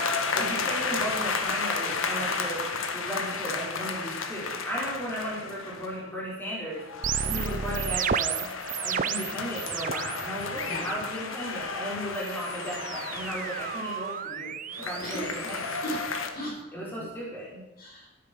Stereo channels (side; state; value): both; normal; correlation 0.12